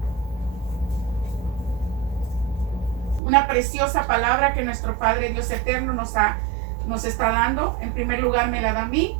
Una preciosa palabra que nuestro Padre Dios eterno nos está dando. En primer lugar me la da a mí,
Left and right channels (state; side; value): drops out; left; at 3.2 s